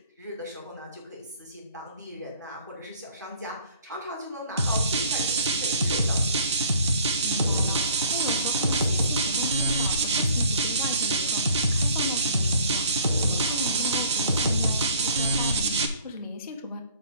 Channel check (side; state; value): both; inverted; correlation -0.54